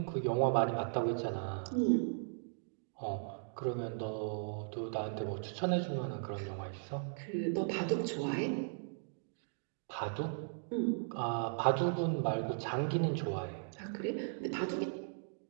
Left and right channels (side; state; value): left; silent; digital silence